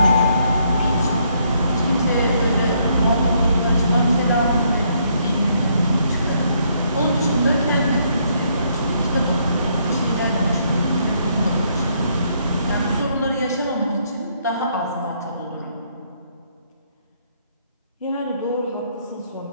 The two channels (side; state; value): both; inverted; correlation -0.71